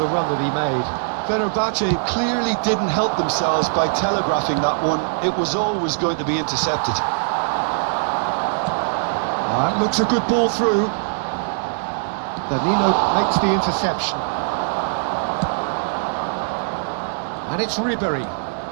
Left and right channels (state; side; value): silent; left; digital silence